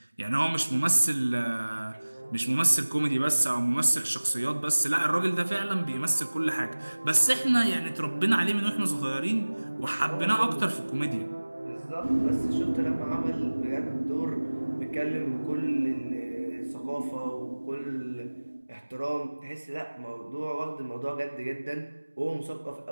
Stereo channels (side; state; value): both; inverted; correlation -1.00